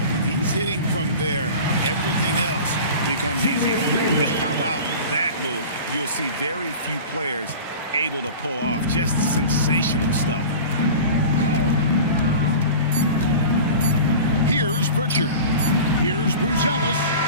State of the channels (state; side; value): inverted; both; correlation -0.36